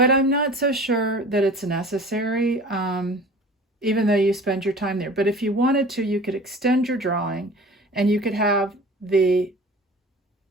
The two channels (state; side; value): normal; both; correlation 0.42